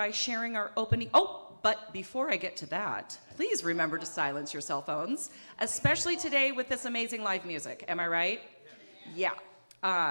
sharing our opening. Oh, but before I get to that, please remember to silence your cell phones, especially today with this amazing live music. Am I right? Yeah.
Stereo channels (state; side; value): inverted; both; correlation -1.00